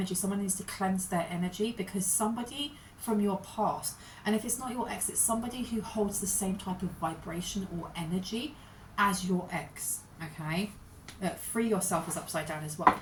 Someone needs to cleanse their energy because somebody from your past, and if it's not your ex, it's somebody who holds the same type of vibration or energy as your ex, okay? Free yourself is upside down as well.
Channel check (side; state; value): both; identical; correlation 1.00